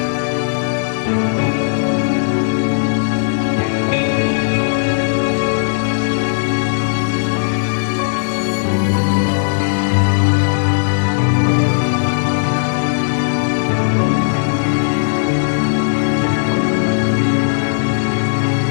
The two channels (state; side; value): silent; right; digital silence